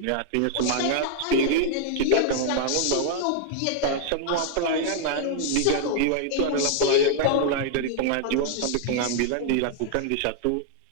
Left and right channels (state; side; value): different; both; correlation -0.01